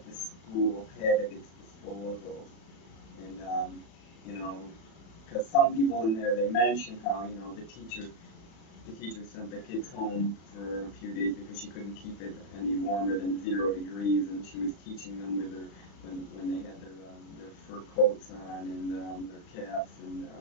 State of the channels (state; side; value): late; right; 36 ms